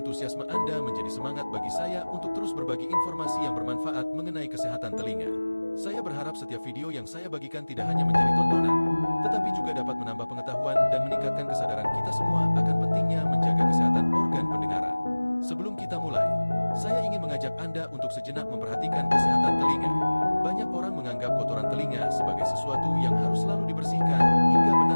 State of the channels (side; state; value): both; inverted; correlation -1.00